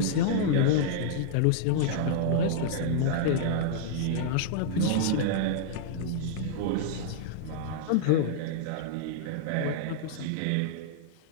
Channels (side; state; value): both; different; correlation -0.01